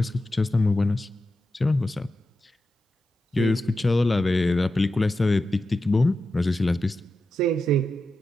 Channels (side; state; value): both; normal; correlation 0.90